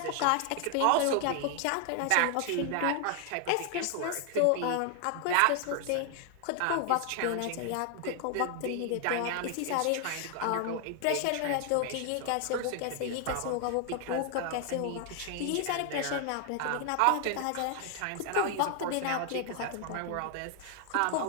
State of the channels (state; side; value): different; both; correlation 0.00